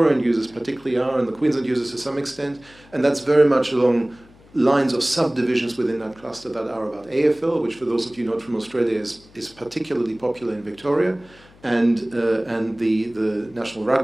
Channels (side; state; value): left; noise; hum, 26 dB below the sound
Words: users particularly are, and the Queensland users to some extent, and that's very much along lines of subdivisions within that cluster that are about AFL, which for those of you not from Australia is particularly popular in Victoria, and the National